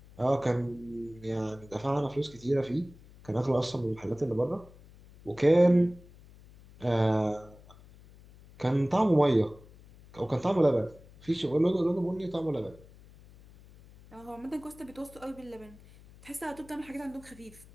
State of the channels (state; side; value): noise; left; hum, 23 dB below the sound